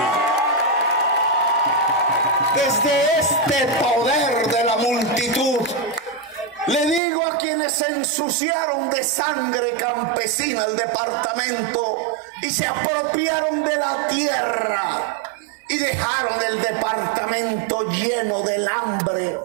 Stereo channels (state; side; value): drops out; left; at 7.0 s